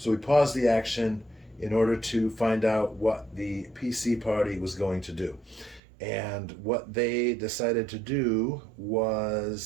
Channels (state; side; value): drops out; left; at 5.8 s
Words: we paused the action in order to find out what the PC party was going to do. And what they decided to do